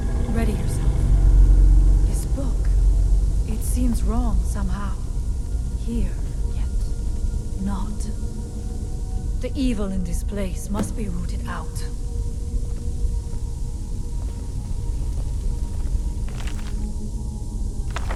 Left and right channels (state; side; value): identical; both; correlation 1.00